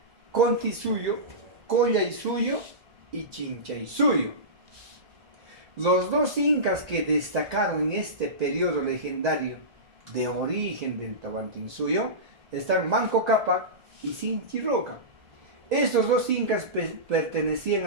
Contisuyo, Collaisuyo y Chinchaysuyo. Los 2 incas que destacaron en este periodo legendario de origen del Tahuantinsuyo están Manco Cápac y Sinchiroca. Estos 2 incas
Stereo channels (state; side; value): late; left; 2.0 ms